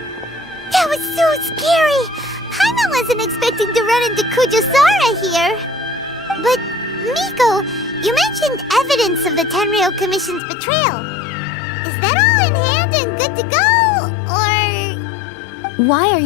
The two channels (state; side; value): drops out; right; at 10.4 s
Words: That was so scary! Paimon wasn't expecting to run into Kujosara here. But, Miko, you mentioned evidence of the Tenryou Commission's betrayal. Is that all in hand and good to go? Or... Why are